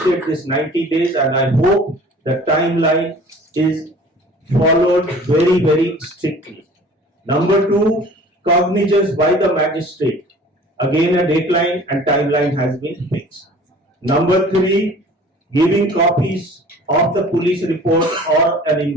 this 90 days, and I hope the timeline is followed very, very strictly. Number two, cognizance by the magistrate. Again, a deadline and timeline has been fixed. Number three, giving copies of the police report or an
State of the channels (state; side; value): normal; both; correlation 0.47